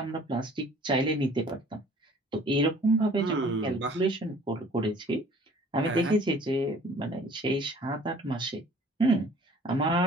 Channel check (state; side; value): normal; both; correlation 0.51